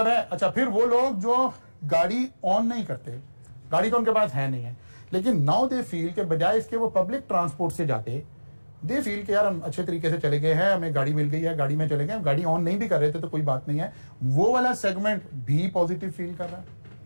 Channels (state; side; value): inverted; both; correlation -1.00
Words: है अच्छा, फिर वो लोग जो गाड़ी ऑन नहीं करते, गाड़ी तो उनके पास है नहीं है, लेकिन नाउ दे फील के बजाय इसके वो पब्लिक ट्रांसपोर्ट से जाते, दे फील के यार हम अच्छे तरीके से चले गए हैं, हमें गाड़ी मिल गई है, गाड़ी में चले गए, हम गाड़ी ऑन नहीं भी कर रहे थे तो कोई बात नहीं है, वो वाला सेगमेंट भी पॉजिटिव फील कर रहा है।